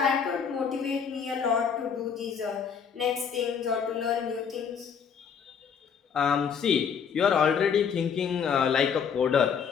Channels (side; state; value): right; quieter; 7.0 dB